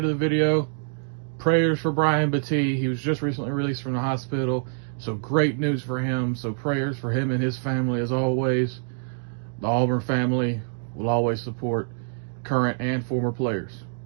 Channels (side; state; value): left; silent; digital silence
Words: the video, prayers for Brian Battie. He was just recently released from the hospital, so great news for him. So prayers for him and his family as always. The Auburn family will always support current and former players.